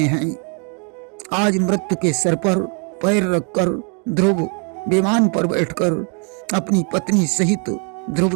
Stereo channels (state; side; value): quieter; left; 38.7 dB